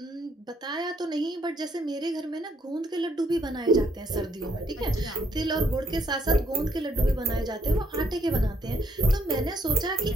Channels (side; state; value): both; normal; correlation 0.70